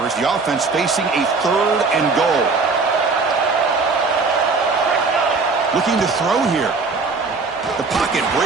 as the offense facing a 3rd and goal. Looking to throw here. The pocket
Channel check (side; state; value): left; quieter; 4.3 dB